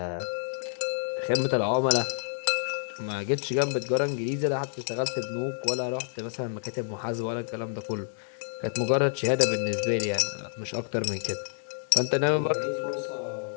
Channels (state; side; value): silent; right; digital silence